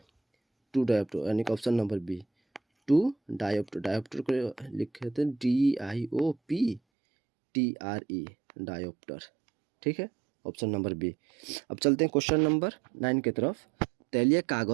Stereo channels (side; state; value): left; drops out; at 6.8 s